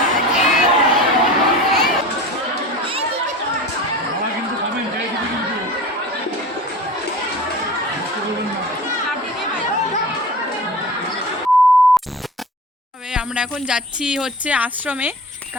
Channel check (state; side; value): normal; both; correlation 0.35